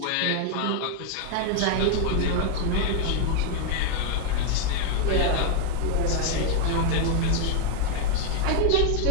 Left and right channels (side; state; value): both; different; correlation 0.00